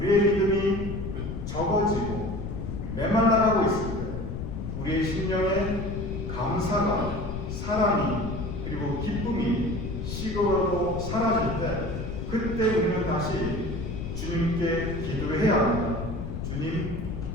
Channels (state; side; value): noise; left; rumble, 5 dB below the sound